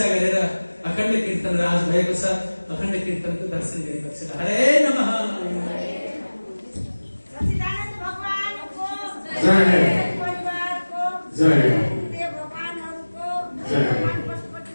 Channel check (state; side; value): inverted; both; correlation -1.00